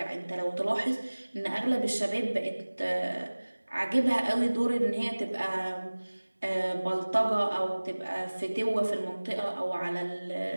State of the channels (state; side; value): inverted; both; correlation -1.00